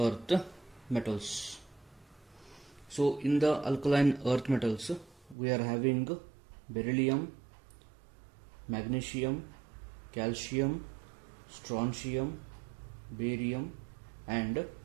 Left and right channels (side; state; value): left; drops out; at 5.4 s